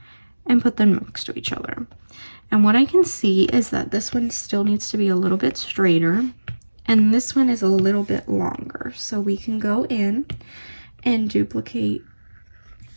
and put them next to each other. And what I can see is that this one still needs to be a little bit straighter and this one is a little bit longer. So we can go in and duplicate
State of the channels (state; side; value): inverted; both; correlation -1.00